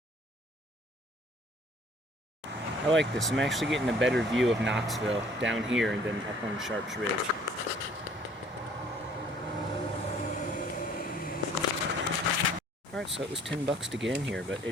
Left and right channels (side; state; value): both; normal; correlation 0.56